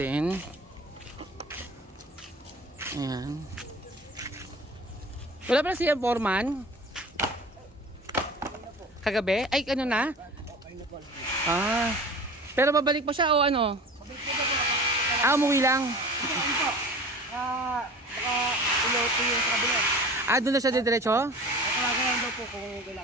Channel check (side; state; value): both; normal; correlation 0.39